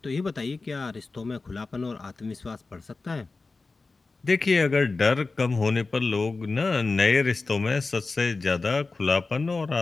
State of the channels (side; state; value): right; quieter; 3.8 dB